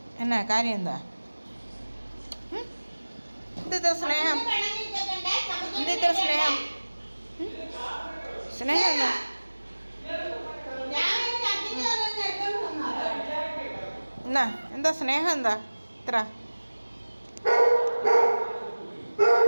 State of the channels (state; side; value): inverted; both; correlation -1.00